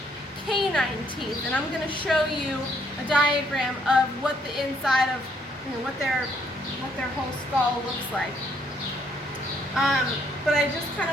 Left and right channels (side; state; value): both; normal; correlation 0.69